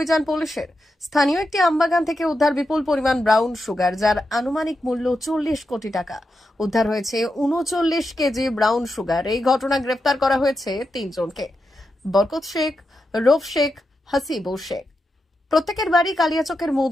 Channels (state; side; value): normal; both; correlation 0.87